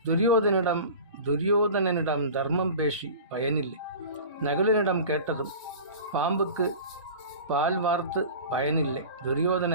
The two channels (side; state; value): both; inverted; correlation -0.37